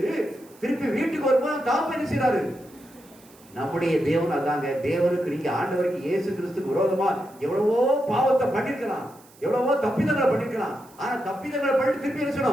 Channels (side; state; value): right; noise; hiss, 26 dB below the sound